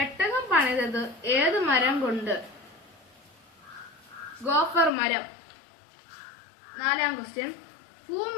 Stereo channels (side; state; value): right; drops out; at 4.9 s